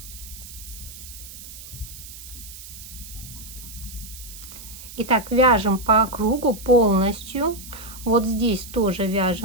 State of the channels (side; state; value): right; noise; hiss, 14 dB below the sound